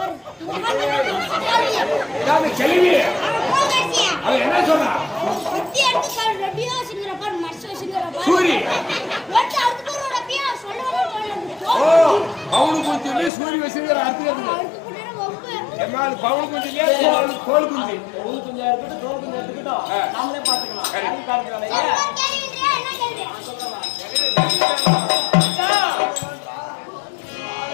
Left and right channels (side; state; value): right; drops out; at 13.3 s